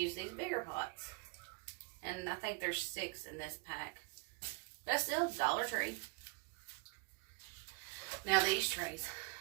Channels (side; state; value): left; quieter; 28.7 dB